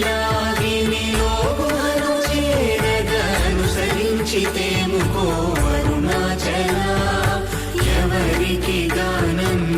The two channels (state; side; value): identical; both; correlation 1.00